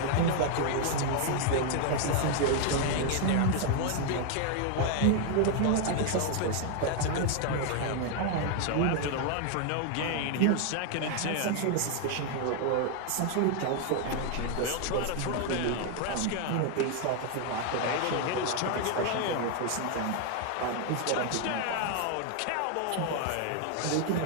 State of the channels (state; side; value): different; both; correlation 0.00